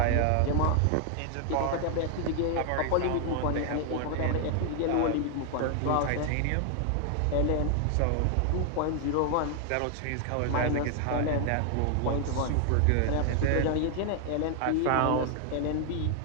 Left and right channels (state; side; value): different; both; correlation 0.00